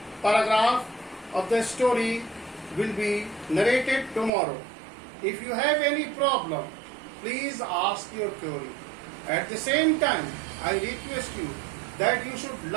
paragraph of the story will be narrated tomorrow. If you have any problem, please ask your query. At the same time, I request you that you should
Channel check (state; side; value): drops out; left; at 4.3 s